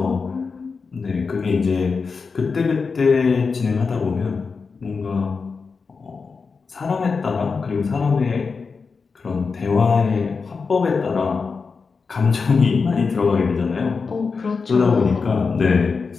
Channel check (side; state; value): right; quieter; 4.9 dB